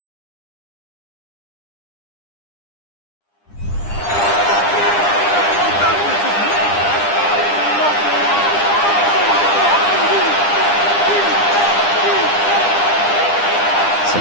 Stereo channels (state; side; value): late; right; 9.9 ms